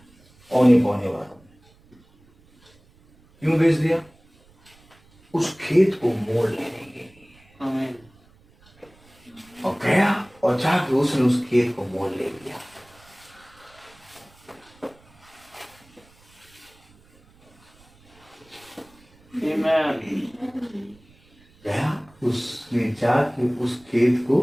औने पौने वालों। क्यों बेच दिया? उस खेत को मोल लेने के लिए। आमीन। और गया और जाके उसने उस खेत को मोल ले लिया। गया उसने जाके उस खेत को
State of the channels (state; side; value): noise; right; rumble, 29 dB below the sound